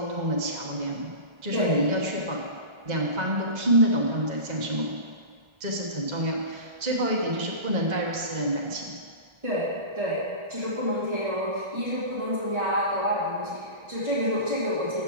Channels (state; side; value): late; left; 1.3 ms